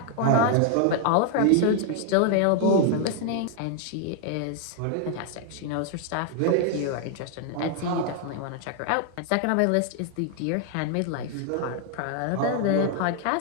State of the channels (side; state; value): both; different; correlation 0.00